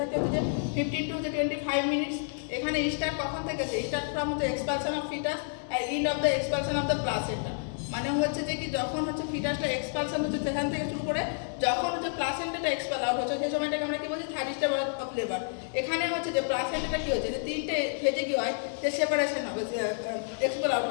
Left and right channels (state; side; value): silent; right; 58 dB below the other